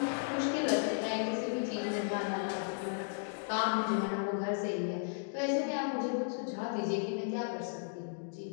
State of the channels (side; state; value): right; silent; digital silence